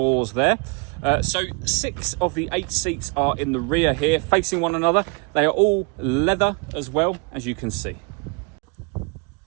there. So 6 of the 8 seats are in the rear here, facing one another. They are all leather as well, as you can see.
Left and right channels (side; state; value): left; quieter; 33.3 dB